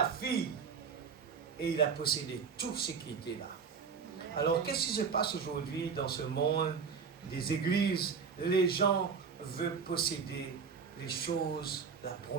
fille et il a possédé tout ce qui était là. Alors, qu'est-ce qui se passe aujourd'hui dans ce monde des églises? Les gens veulent posséder les choses, la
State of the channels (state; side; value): quieter; left; 5.9 dB